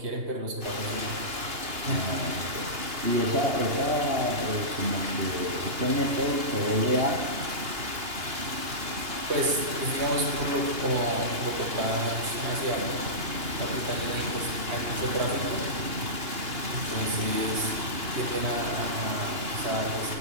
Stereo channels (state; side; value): late; left; 2.8 ms